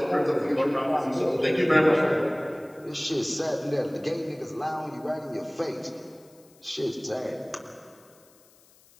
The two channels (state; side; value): noise; left; hiss, 29 dB below the sound